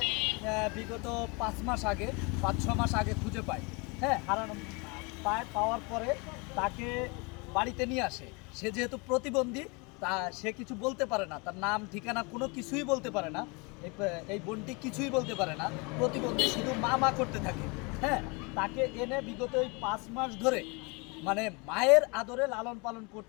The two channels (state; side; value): quieter; right; 29.6 dB